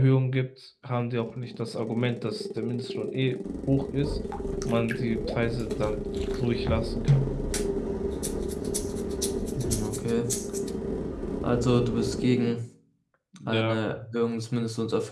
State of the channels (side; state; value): both; identical; correlation 1.00